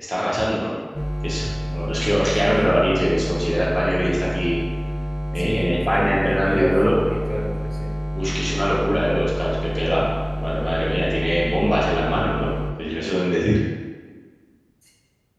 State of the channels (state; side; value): identical; both; correlation 1.00